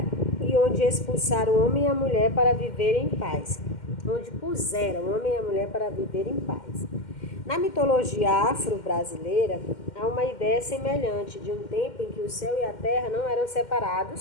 e onde expulsaram o homem e a mulher para viver em paz. Onde puseram o homem e a mulher para viver em paz. Na mitologia afro-brasileira, há uma ideia semelhante de um tempo em que o céu e a terra não eram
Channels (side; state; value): right; late; 2.1 ms